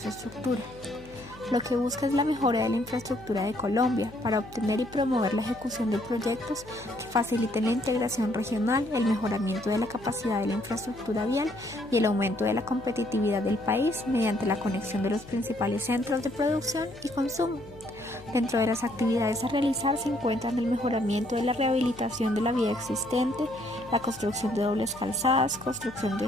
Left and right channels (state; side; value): noise; left; hum, 20 dB below the sound